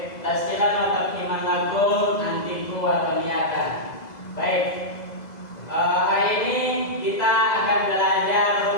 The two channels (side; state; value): right; late; 2.0 ms